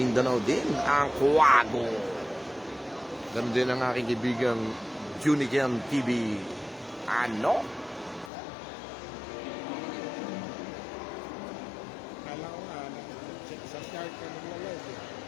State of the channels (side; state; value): right; drops out; at 8.3 s